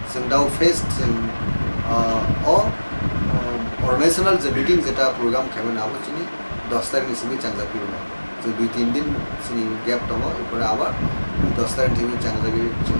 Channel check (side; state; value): both; inverted; correlation -1.00